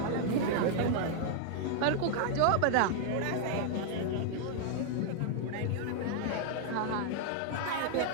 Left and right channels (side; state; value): both; different; correlation 0.00